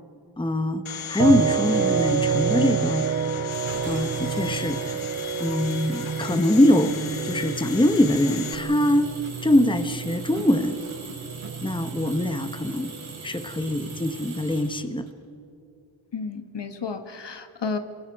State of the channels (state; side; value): normal; both; correlation 0.63